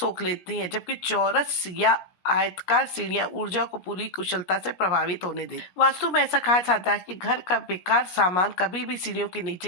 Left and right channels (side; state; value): right; late; 17 ms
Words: लेती हैं, जबकि चौरस या आयताकार सीढ़ियां ऊर्जा को पूरी कुशलता से प्रभावित होने देती। वास्तु में ऐसा कहा जाता है कि घर का बेकार सामान कभी भी सीढ़ियों के